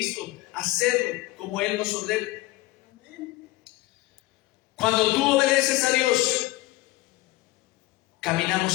hacerlo como Él nos ordena. Cuando tú obedeces a Dios,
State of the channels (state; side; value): quieter; right; 19.2 dB